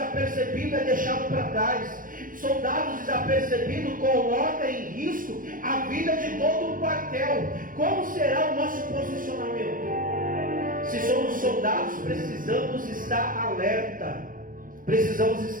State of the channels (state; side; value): late; left; 0.40 ms